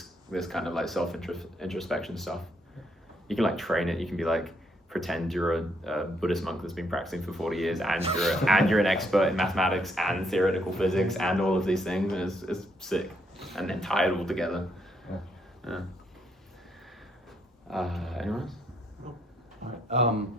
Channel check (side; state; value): both; normal; correlation 0.73